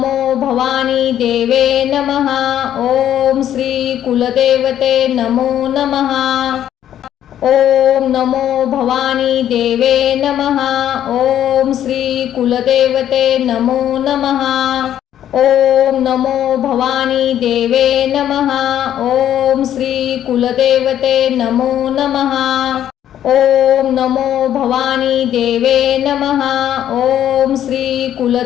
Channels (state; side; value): quieter; right; 10.9 dB